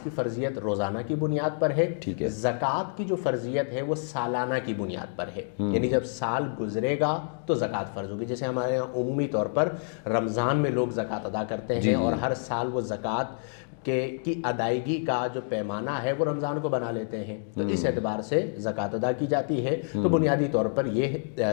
کی فرضیت روزانہ کی بنیاد پر ہے، زکوٰۃ کی جو فرضیت ہے وہ سالانہ کی بنیاد پر ہے، یعنی جب سال گزرے گا تو زکوٰۃ فرض ہوگی۔ جیسے ہمارے یہاں عمومی طور پر رمضان میں لوگ زکوٰۃ ادا کرتے ہیں، اور ہر سال وہ زکوٰۃ کی ادائیگی کا جو پیمانہ ہے وہ رمضان کو بنا لیتے ہیں، تو اس اعتبار سے زکوٰۃ ادا کی جاتی ہے۔ تو بنیادی طور پر یہ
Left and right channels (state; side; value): silent; right; digital silence